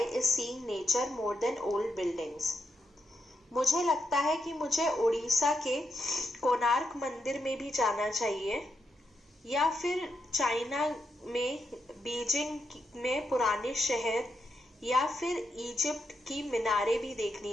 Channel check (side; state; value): both; normal; correlation 0.83